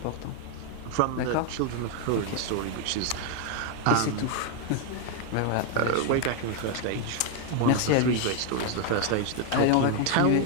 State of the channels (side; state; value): both; different; correlation 0.01